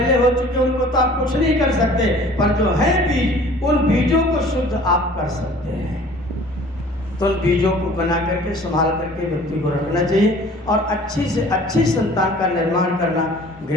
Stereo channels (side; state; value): both; normal; correlation 0.49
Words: हो चुके उनको तो आप कुछ नहीं कर सकते, पर जो है बीज, उन बीजों को शुद्ध आप कर सकते हैं। तो उन बीजों को बना करके संभाल करके व्यक्ति को रखना चाहिए, और अच्छी से अच्छी संतान का निर्माण करना